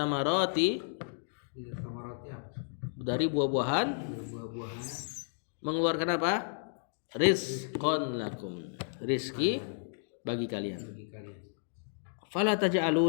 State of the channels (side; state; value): right; silent; digital silence